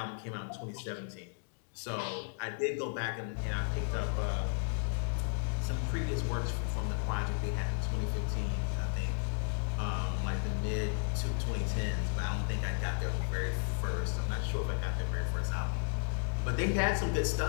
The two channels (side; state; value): right; silent; digital silence